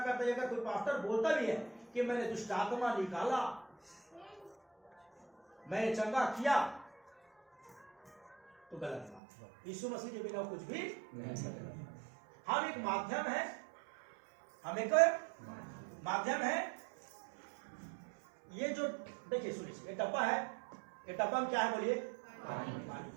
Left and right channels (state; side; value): drops out; left; at 9.2 s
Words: है। अगर कोई पास्टर बोलता भी है कि मैंने दुष्ट आत्मा निकाला, मैंने चंगा किया, तो गलत बात है। यीशु मसीह के बिना कुछ भी नहीं। हम एक माध्यम है, हम एक माध्यम है। ये जो देखिए सुनिए, ये डब्बा है, ये डब्बा में क्या है बोलिए? पानी।